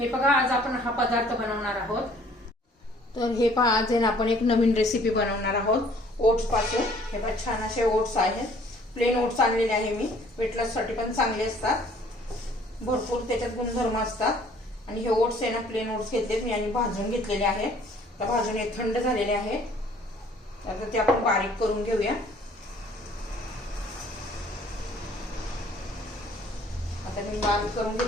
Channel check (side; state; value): both; normal; correlation 0.57